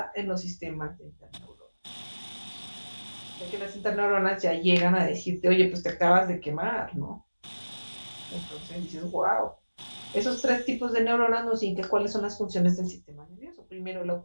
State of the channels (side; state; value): both; inverted; correlation -1.00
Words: en los sistemas de interneuronas. Ya que las interneuronas ya llegan a decirte, oye, pues te acabas de quemar, ¿no? Entonces dices, wow. Esos 3 tipos de neuronas nos indican cuáles son las funciones del sistema nervioso. Primero, la